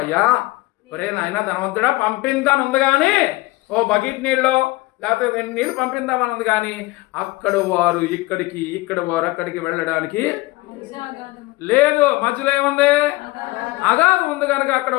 అయ్యా ఒరే నాయన ధనవంతుడా, పంపిందాని ఉంది కానీ ఓ బకెట్ నీళ్ళు లేకపోతే నీళ్ళు పంపిందామని ఉంది కానీ అక్కడ వారు ఇక్కడికి, ఇక్కడ వారు అక్కడికి వెళ్ళడానికి లేదు. మధ్యలో ఏముంది? అగాధం ఉంది కనుక అక్కడ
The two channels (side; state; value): right; quieter; 21.1 dB